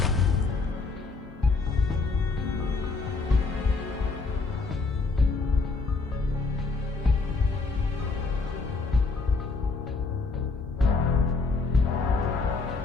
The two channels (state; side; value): quieter; right; 4.1 dB